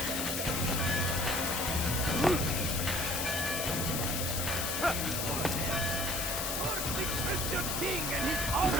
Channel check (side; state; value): left; noise; hiss, 1 dB below the sound